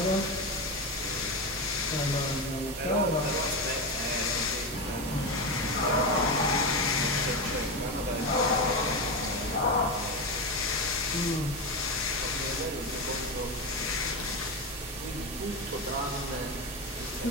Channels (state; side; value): normal; both; correlation 0.16